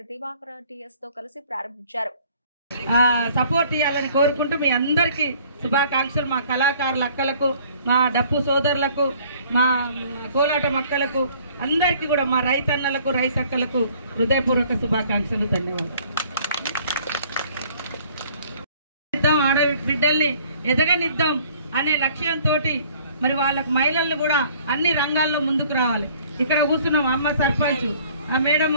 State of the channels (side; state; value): both; inverted; correlation -0.56